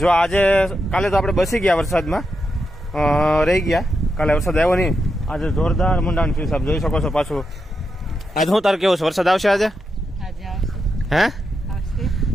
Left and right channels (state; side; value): normal; both; correlation 0.85